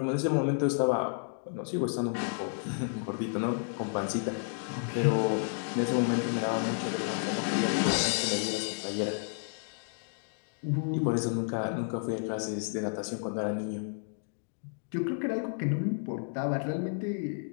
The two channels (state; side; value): silent; right; digital silence